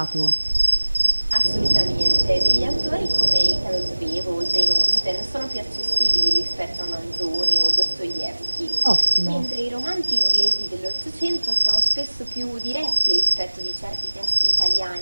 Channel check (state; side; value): inverted; both; correlation -1.00